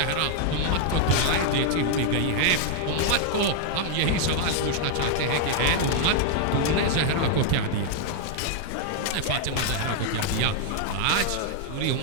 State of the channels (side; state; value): both; different; correlation 0.00